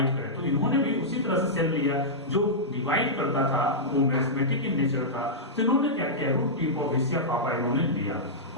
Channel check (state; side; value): normal; both; correlation -0.11